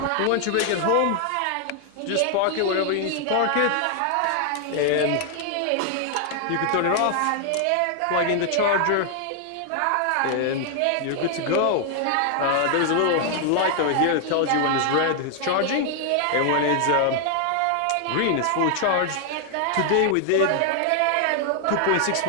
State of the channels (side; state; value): both; different; correlation 0.00